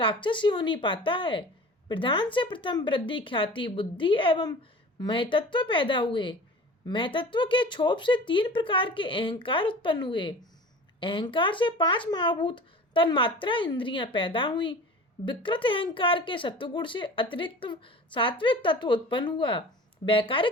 ही हो नहीं पाता है। प्रधान से प्रथम वृद्धि, ख्याति, बुद्धि एवं महतत्व पैदा हुए। महतत्व के क्षोभ से 3 प्रकार के अहंकार उत्पन्न हुए। अहंकार से 5 महाभूत तन्मात्रा इंद्रियां पैदा हुई। विकृत अहंकार के सत्वगुण से अतिरिक्त सात्विक तत्व उत्पन्न हुआ।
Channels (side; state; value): both; normal; correlation 0.39